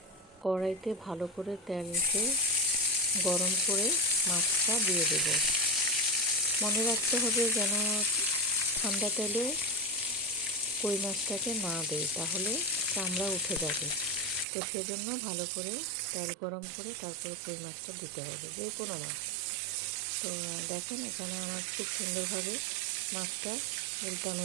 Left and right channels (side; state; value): left; drops out; at 14.5 s